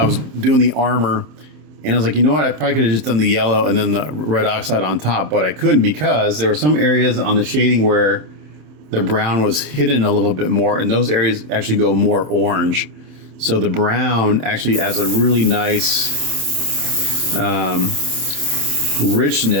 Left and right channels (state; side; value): late; left; 27 ms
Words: was doing the armor, and I was like, you know what? I probably could have just done the yellow and then the red oxide on top, but I couldn't because there were some areas on the shading where the brown was hidden a little bit more, and those areas actually go more orange. So the brown actually adds a really nice